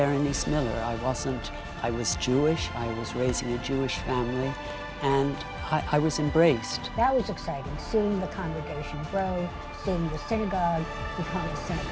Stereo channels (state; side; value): identical; both; correlation 1.00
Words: Miller. I was Jewish, I was raising a Jewish family, and I was embraced. That was exciting, seeing the congregation grow, seeing the synagogue become a